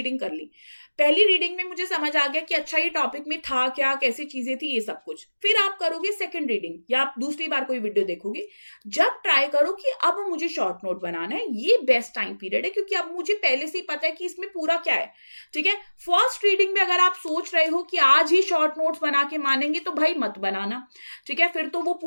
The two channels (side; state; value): both; inverted; correlation -1.00